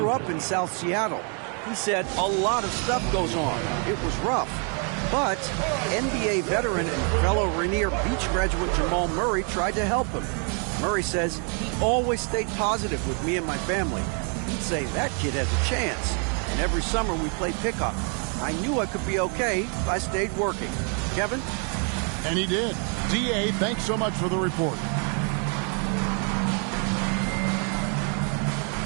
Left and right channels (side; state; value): left; quieter; 39.6 dB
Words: up in South Seattle. He said a lot of stuff goes on. It was rough. But NBA veteran and fellow Rainier Beach graduate Jamal Murray tried to help him. Murray says he always stayed positive with me and my family. He'd say that kid has a chance. And every summer we played pickup. I knew I could be okay if I stayed working. Kevin? And he did. D.A., thanks so much for the report.